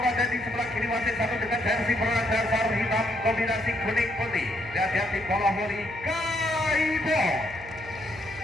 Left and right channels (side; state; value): right; noise; hum, 16 dB below the sound